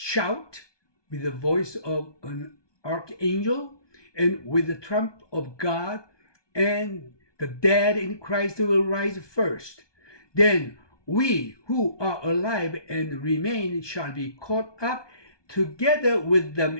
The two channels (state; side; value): late; right; 1.2 ms